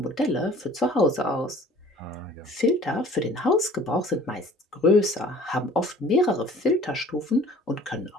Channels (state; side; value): normal; both; correlation 0.49